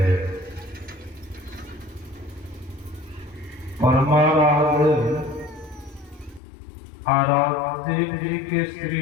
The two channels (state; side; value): drops out; right; at 6.4 s